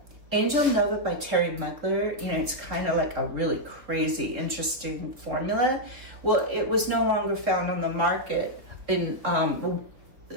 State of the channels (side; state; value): left; late; 3.5 ms